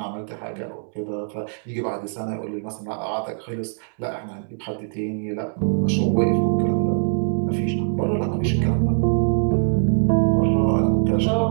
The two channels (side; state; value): left; silent; digital silence